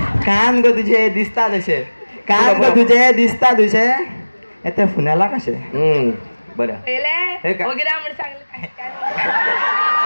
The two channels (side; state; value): both; inverted; correlation -1.00